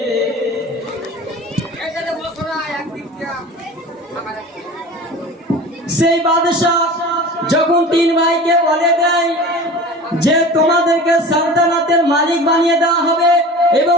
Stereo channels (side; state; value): both; normal; correlation 0.37